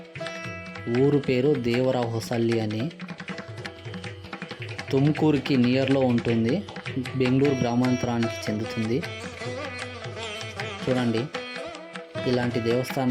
ఊరు పేరు దేవరహొసల్లి అని. తుమ్కూరుకి నియర్లో ఉంటుంది. బెంగళూరు గ్రామాంతరానికి చెందుతుంది. చూడండి, ఇలాంటి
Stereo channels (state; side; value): identical; both; correlation 1.00